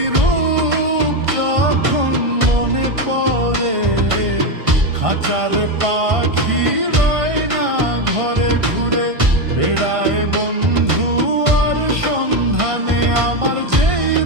রূপ যখন মনে পড়ে, খাঁচার পাখি রয় না ঘরে ঘুরে বেড়ায় বন্ধু আর সন্ধানে। আমার যেই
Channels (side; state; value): left; late; 1.5 ms